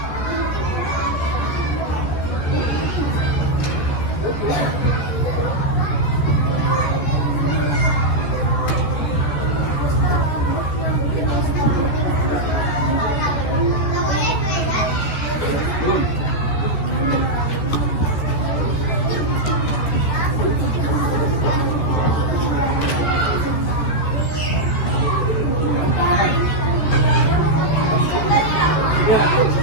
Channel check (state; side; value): late; right; 14 ms